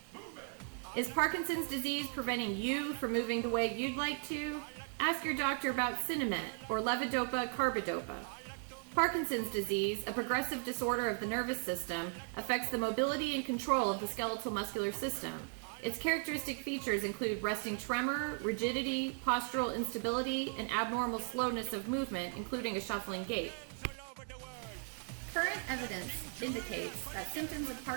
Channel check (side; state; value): left; silent; 53 dB below the other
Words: move it. Is Parkinson's disease preventing you from moving the way you'd like to? Ask your doctor about Sinemet or Levodopa Carbidopa. Parkinson's disease, a progressive disorder of the nervous system, affects the mobility and control of the skeletal muscular system. Its characteristic features include resting tremor, rigidity, postural instability, and abnormal slowness of movement, including a shuffling gait. Current evidence indicates that symptoms of